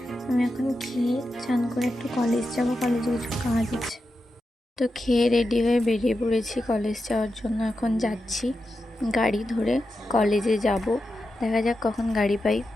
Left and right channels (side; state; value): both; normal; correlation 0.89